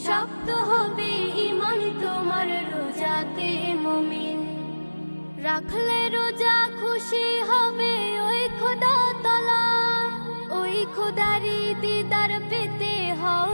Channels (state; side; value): inverted; both; correlation -1.00